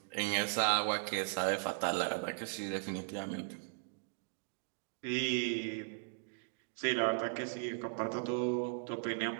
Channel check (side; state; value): left; silent; digital silence